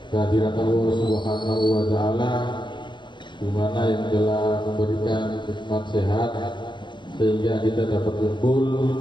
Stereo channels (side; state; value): right; late; 0.23 ms